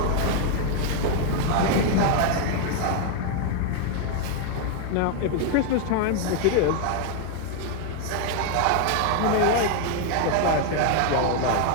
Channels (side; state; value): both; different; correlation 0.00